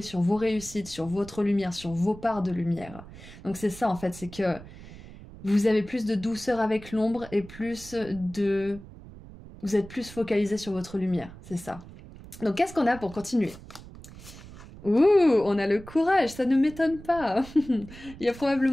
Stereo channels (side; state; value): right; noise; rumble, 17 dB below the sound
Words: sur vos réussites, sur votre lumière, sur vos parts de lumière. Donc c'est ça en fait, c'est que vous avez plus de douceur avec l'ombre et vous êtes plus focalisé sur votre lumière, c'est ça. Donc qu'est-ce qu'on a pour continuer ? Ouh, on a le courage, ça ne m'étonne pas. Il y a